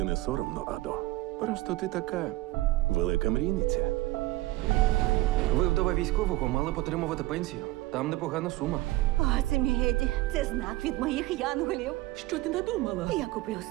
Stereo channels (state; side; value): quieter; left; 19.1 dB